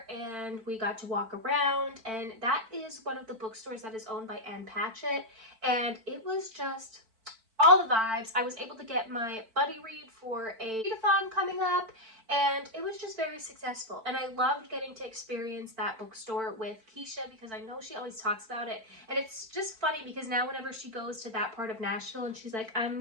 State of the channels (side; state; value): left; late; 4.5 ms